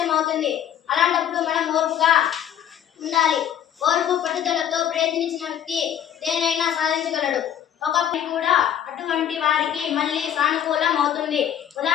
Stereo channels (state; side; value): quieter; right; 10.0 dB